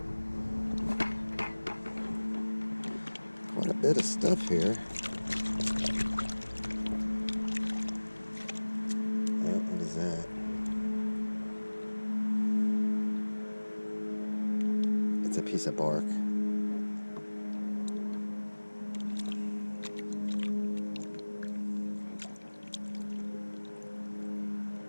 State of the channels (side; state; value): both; inverted; correlation -1.00